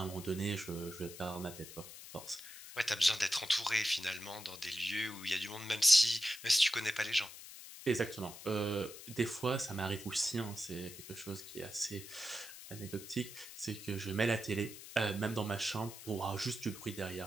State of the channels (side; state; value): left; noise; hiss, 14 dB below the sound